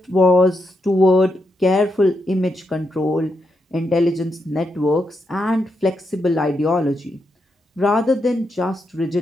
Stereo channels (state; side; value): normal; both; correlation 0.83